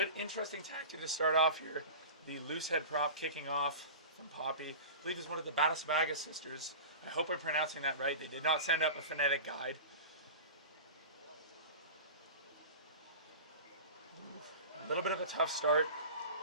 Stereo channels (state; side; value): inverted; both; correlation -0.33